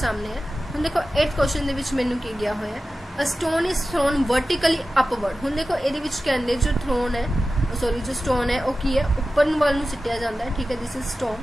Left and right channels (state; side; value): normal; both; correlation 0.94